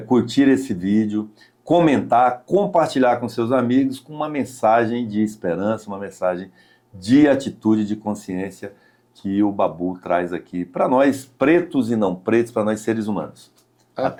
curtir esse vídeo, comentar, compartilhar com seus amigos com uma mensagem de esperança, uma mensagem de atitude, de consciência que o Babu traz aqui para nós, pretos e não pretos, para nós seres humanos.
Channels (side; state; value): both; identical; correlation 1.00